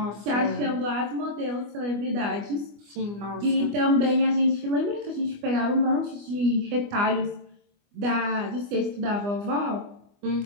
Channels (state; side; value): late; left; 25 ms